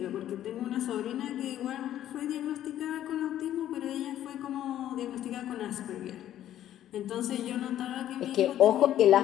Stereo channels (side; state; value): right; quieter; 11.9 dB